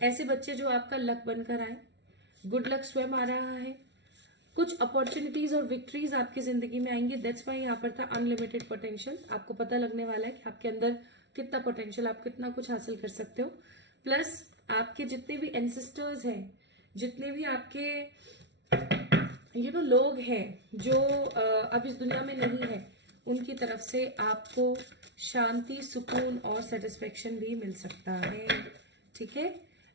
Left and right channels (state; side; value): late; left; 0.51 ms